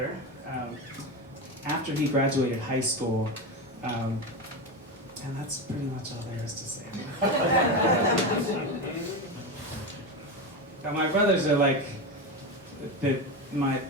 after he graduated high school. And that's pretty much all there is to say. My brothers are like my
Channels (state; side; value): normal; both; correlation 0.18